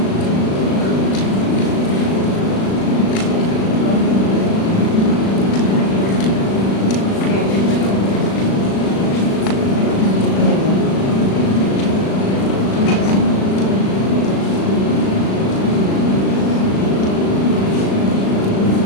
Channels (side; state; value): right; late; 36 ms